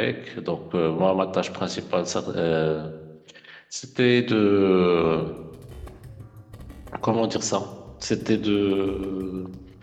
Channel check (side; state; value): both; identical; correlation 1.00